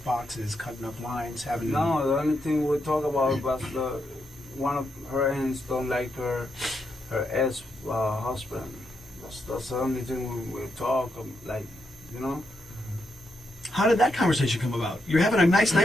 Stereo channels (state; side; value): normal; both; correlation 0.82